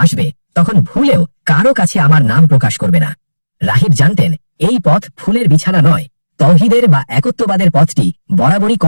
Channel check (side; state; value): both; inverted; correlation -1.00